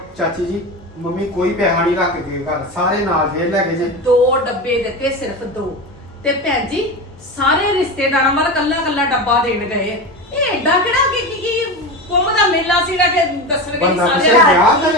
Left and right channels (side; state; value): both; normal; correlation 0.23